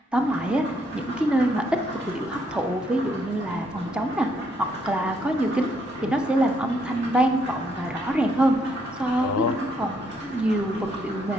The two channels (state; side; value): normal; both; correlation 0.72